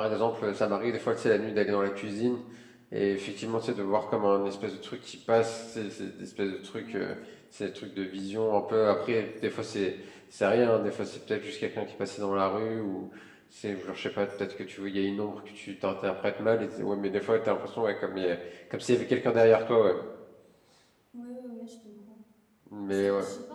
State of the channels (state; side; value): identical; both; correlation 1.00